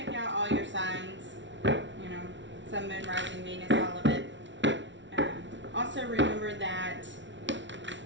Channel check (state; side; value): late; left; 0.54 ms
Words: out all your signs, Sun, Moon, Rising, Venus, all of it. Also remember that